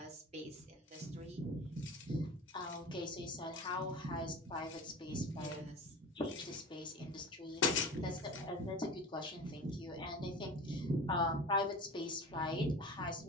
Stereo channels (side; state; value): both; normal; correlation 0.34